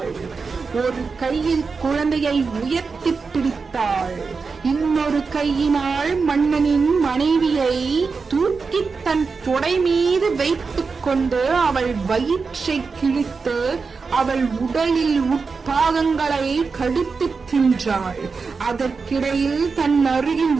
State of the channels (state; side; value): quieter; left; 4.8 dB